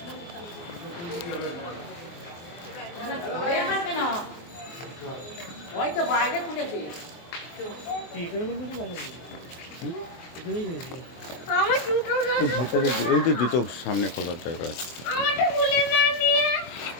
হয়তো বাইরে খুলেছে। এখানেই হয়েছে। আমার জুতো ভিতরে ওই যে জুতো সামনে খোলার জায়গা আছে। আমারটা খুলে না নিয়ে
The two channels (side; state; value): right; late; 23 ms